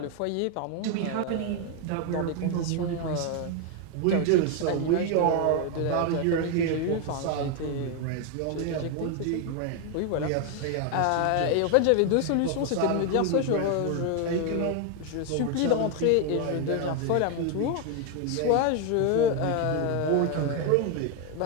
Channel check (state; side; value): different; both; correlation 0.01